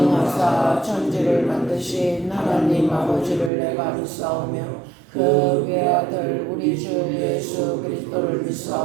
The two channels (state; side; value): drops out; left; at 3.5 s